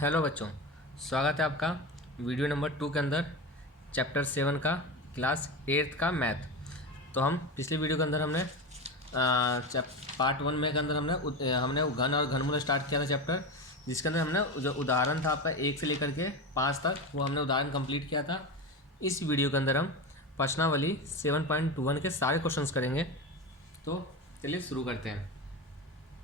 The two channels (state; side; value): normal; both; correlation 0.22